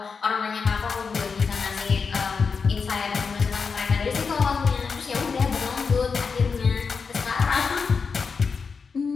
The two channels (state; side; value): quieter; right; 5.3 dB